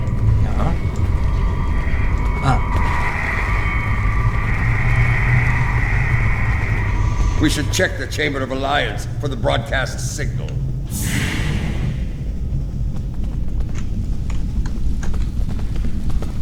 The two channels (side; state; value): both; identical; correlation 1.00